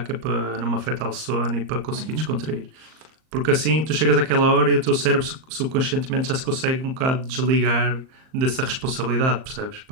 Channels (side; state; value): left; late; 38 ms